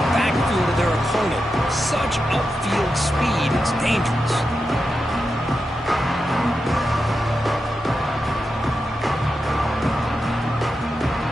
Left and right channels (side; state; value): both; normal; correlation 0.89